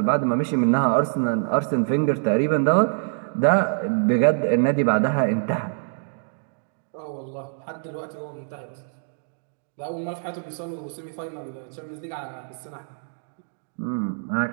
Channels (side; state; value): left; silent; digital silence